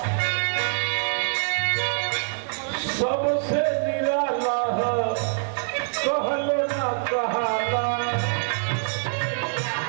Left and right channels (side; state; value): left; silent; digital silence